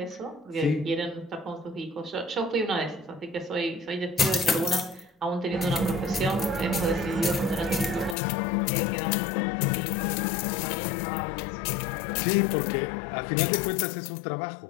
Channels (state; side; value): drops out; right; at 8.2 s